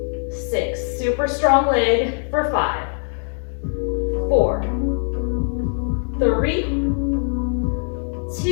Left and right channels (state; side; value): silent; right; 64 dB below the other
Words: 6. Super strong leg for 5, 4, 3,